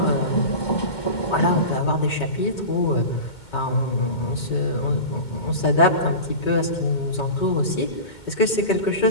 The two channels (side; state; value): right; late; 2.2 ms